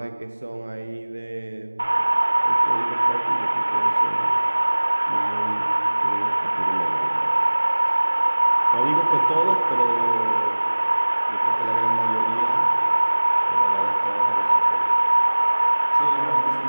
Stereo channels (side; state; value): both; inverted; correlation -1.00